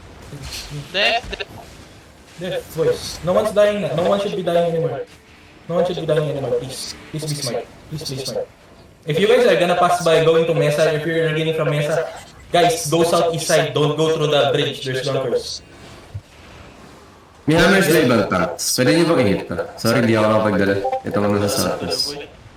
Death. Death, boys. No one's dying na. No one should be dying anymore. Please be smart. If you guys are gonna pass by going to Mesa, if you're getting from Mesa, guys, go southeast side. Don't go through the bridge. There's bunkers. May hammers na ibang tanks. Pwede niyo bang i-hit ko? Sorry, hindi ako nakapagdala. Ito ko nasa southeast.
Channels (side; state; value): both; identical; correlation 1.00